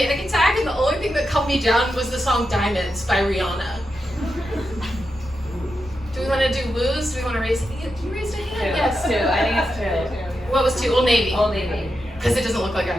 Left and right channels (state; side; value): normal; both; correlation 0.88